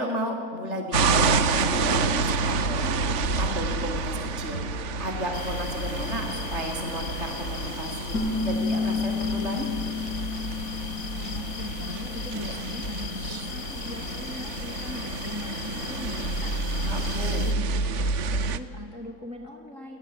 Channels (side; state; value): right; late; 3.5 ms